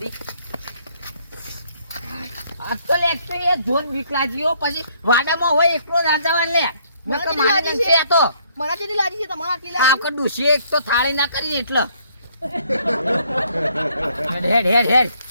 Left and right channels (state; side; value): inverted; both; correlation -0.66